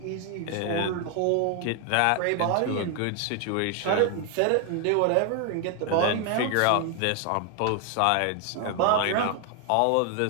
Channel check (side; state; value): both; different; correlation 0.01